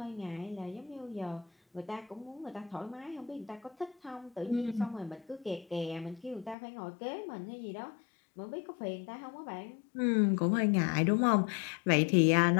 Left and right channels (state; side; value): drops out; right; at 6.6 s